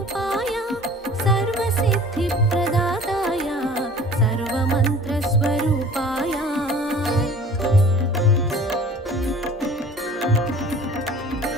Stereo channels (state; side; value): normal; both; correlation 0.46